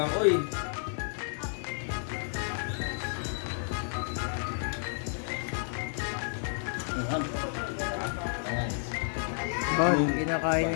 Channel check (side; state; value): right; silent; digital silence